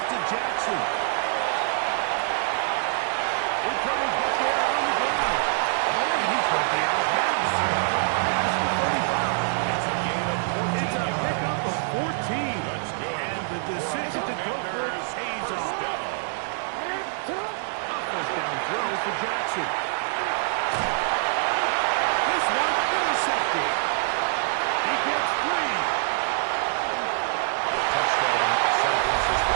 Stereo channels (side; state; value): left; silent; digital silence